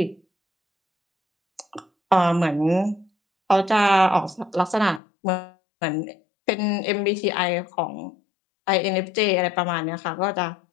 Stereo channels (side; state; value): right; drops out; at 5.0 s